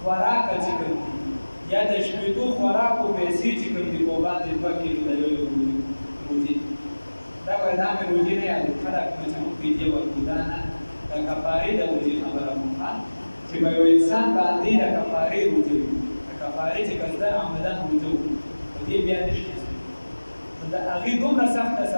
خوراکه چې کوم دي یا د شپېتو خوراکو پیسې چې کوم دي په باندې 2 کیلو د یو روژې دا وایي دا مې روژې نه یادو خلک مې چې موږ فدیه ورکړو دا نه د کفارې د روژې خبره کوم چې به یو انسان باندې د کفارې روژه وي د کفارې چې قصدن عمدن روژه وکړي په دې بیا نشي د هغې دومره سخته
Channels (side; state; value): both; inverted; correlation -1.00